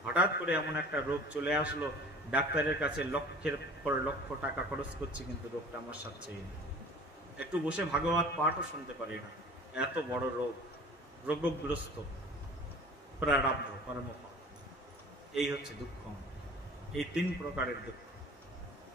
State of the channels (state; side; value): normal; both; correlation 0.44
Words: হঠাৎ করে এমন একটা রোগ চলে আসলো। ডাক্তারের কাছে লক্ষের পর লক্ষ টাকা খরচ করছি, কিন্তু রোগটা আমার সাথেই নেই। একটু বসে ভাগবত পাঠও শুনতে পারি না, এত বড় রোগ, রোগগ্রস্ত, প্রারব্ধ কর্মফল। এই হচ্ছে দুঃখ। এই 3 প্রকারের দুঃখ।